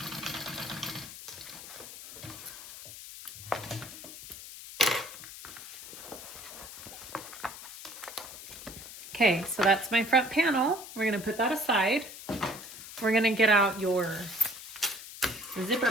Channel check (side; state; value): left; noise; hiss, 13 dB below the sound